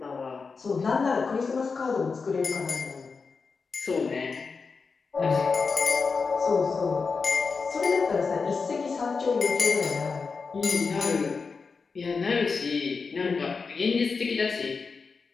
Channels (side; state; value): right; quieter; 4.8 dB